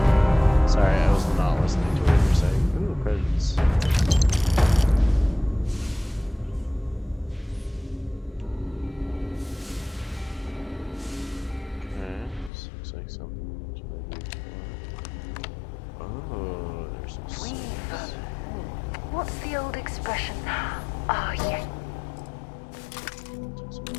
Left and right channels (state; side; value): drops out; right; at 12.5 s